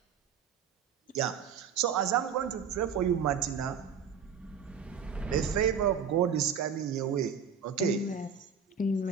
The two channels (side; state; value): left; quieter; 6.8 dB